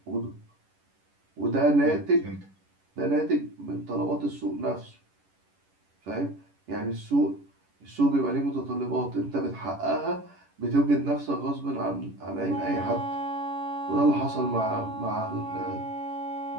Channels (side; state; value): left; late; 11 ms